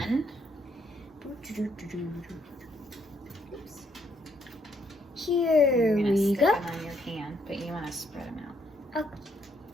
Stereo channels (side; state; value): both; normal; correlation 0.72